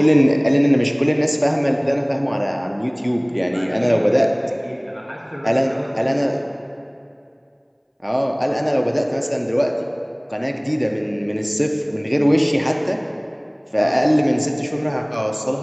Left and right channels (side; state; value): both; identical; correlation 1.00